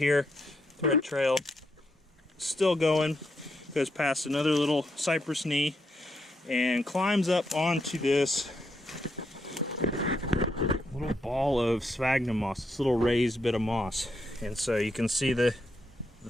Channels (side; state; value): both; normal; correlation 0.80